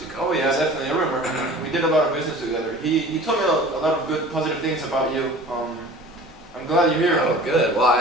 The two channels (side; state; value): both; normal; correlation 0.42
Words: companies. Oh yeah, definitely. I remember. We did a lot of business together. He told me a lot of good, positive things about you. I'm glad you're here. Oh, good. Well,